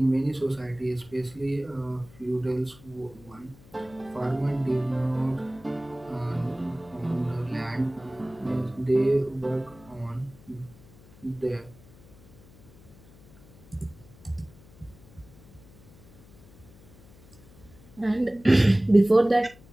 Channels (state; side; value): noise; left; hum, 24 dB below the sound